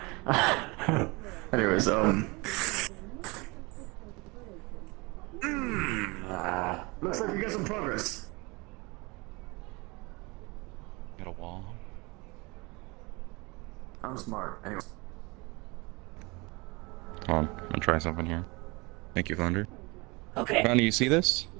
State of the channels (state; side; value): quieter; left; 26.3 dB